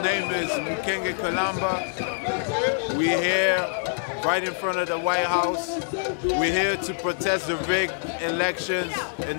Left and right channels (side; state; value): right; silent; 57 dB below the other